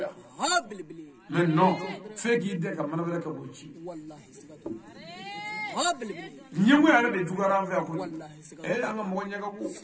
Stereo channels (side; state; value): both; identical; correlation 1.00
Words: mais non fe ki de ka manabere ka bochi wallahi sigatu ñemu ya de dugara fa ko e anga mo ñaga ko